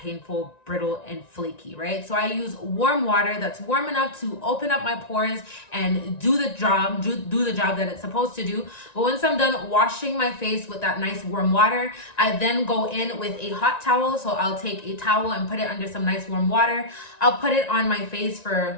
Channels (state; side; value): late; right; 1.9 ms